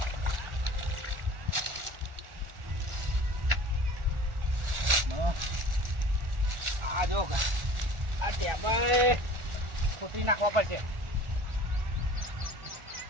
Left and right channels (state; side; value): late; left; 1.4 ms